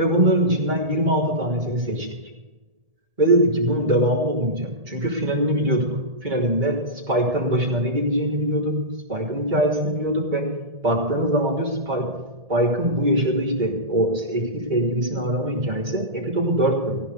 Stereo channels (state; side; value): late; left; 1.7 ms